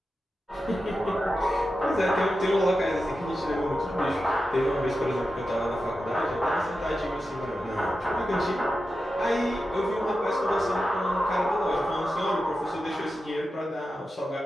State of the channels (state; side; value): normal; both; correlation 0.91